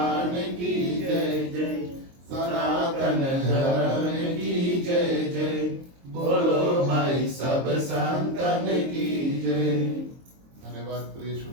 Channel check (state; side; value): late; left; 22 ms